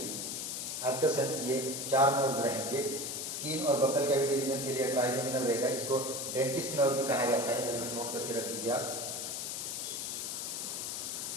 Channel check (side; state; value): left; noise; hiss, 4 dB below the sound